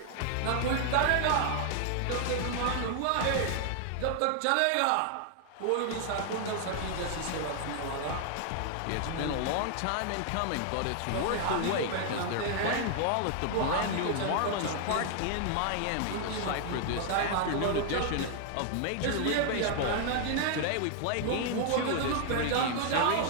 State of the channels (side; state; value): both; different; correlation 0.00